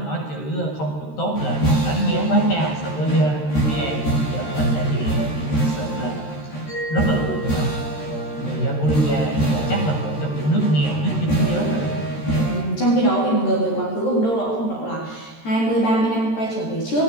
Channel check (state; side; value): late; right; 13 ms